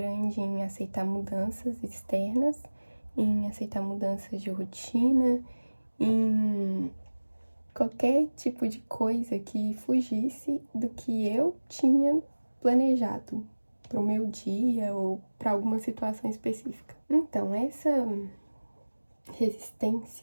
em aceitar mudanças externas, em aceitar mudanças de rotina, em qualquer tipo de coisa que fugisse do que eu tinha planejado para o meu dia ou para alguma situação específica. Então, essa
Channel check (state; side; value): inverted; both; correlation -1.00